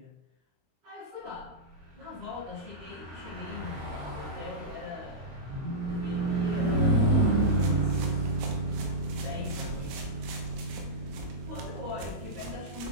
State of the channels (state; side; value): late; left; 22 ms